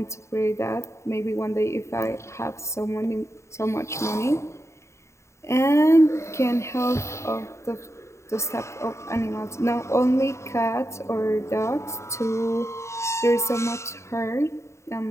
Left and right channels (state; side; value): late; right; 0.14 ms